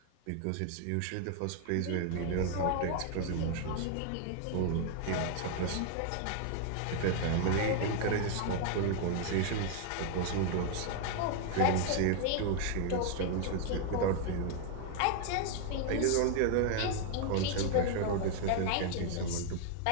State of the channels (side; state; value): both; different; correlation 0.00